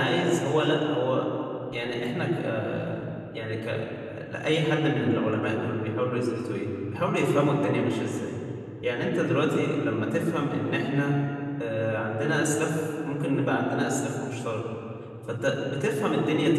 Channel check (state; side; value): identical; both; correlation 1.00